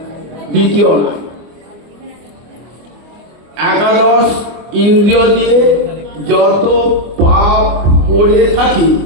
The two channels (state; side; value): late; left; 24 ms